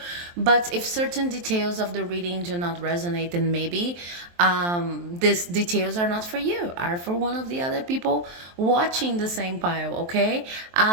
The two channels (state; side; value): late; left; 23 ms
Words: but if certain details of the reading do not resonate, then maybe these details are not for you, are for one of the other people watching the same pile. Okay,